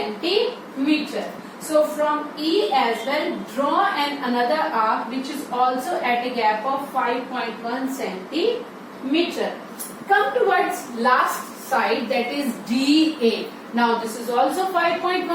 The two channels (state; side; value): identical; both; correlation 1.00